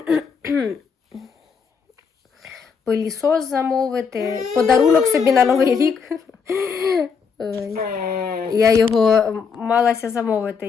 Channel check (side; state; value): right; quieter; 5.9 dB